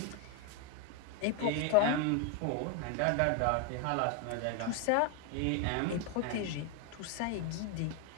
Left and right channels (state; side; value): different; both; correlation 0.01